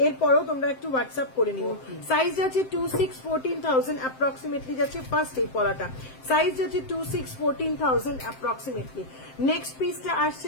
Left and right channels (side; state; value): right; late; 7.7 ms